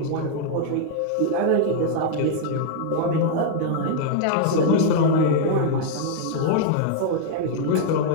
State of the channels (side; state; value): both; different; correlation 0.00